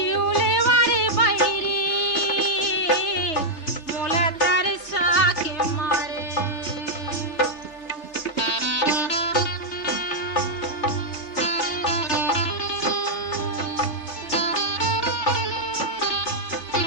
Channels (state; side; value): late; right; 3.4 ms